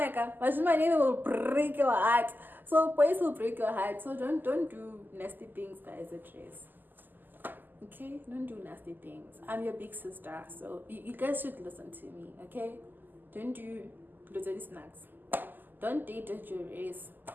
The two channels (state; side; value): late; left; 0.089 ms